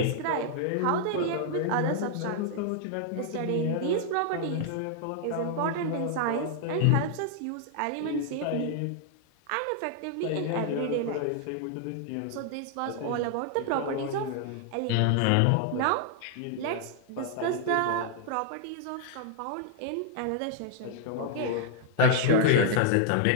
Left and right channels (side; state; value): both; different; correlation -0.01